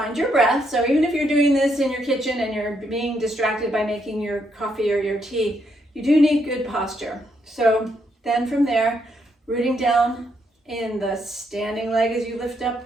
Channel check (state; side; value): normal; both; correlation 0.76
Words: your breath. So even if you're doing this in your kitchen and you're being distracted by making your coffee or your tea, you do need good posture. So then from there, rooting down in the standing leg as you lift up